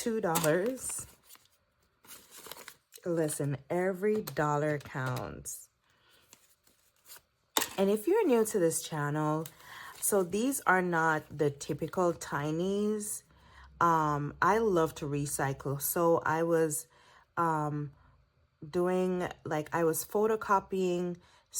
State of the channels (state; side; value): identical; both; correlation 1.00